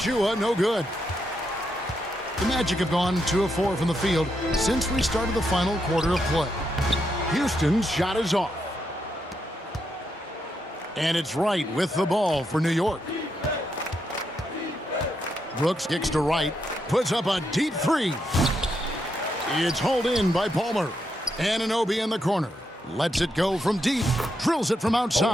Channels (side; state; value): both; normal; correlation 0.81